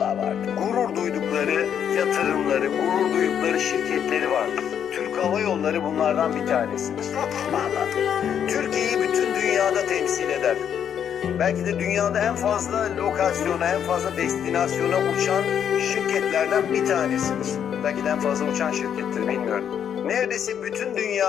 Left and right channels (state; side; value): quieter; right; 8.7 dB